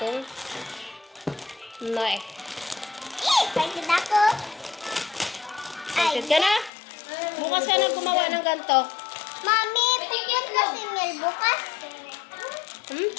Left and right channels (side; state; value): right; drops out; at 6.7 s